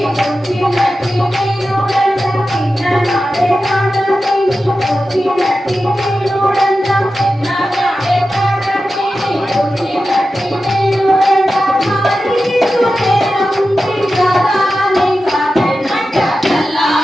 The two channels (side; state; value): both; normal; correlation 0.92